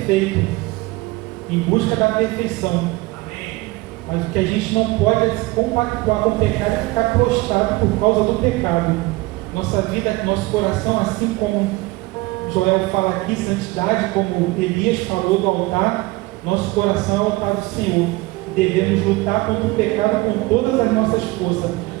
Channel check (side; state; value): left; quieter; 21.4 dB